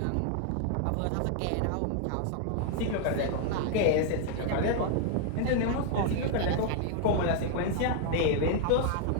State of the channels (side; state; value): both; different; correlation 0.00